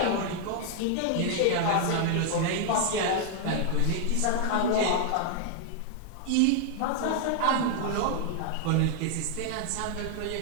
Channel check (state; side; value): different; both; correlation 0.00